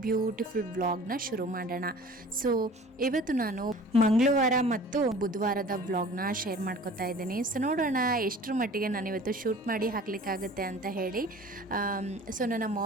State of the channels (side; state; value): both; normal; correlation 0.45